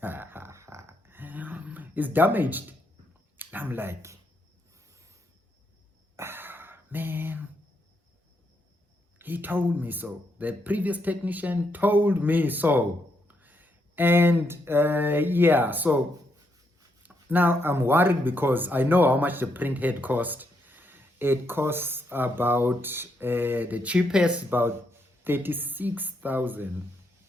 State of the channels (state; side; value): normal; both; correlation 0.78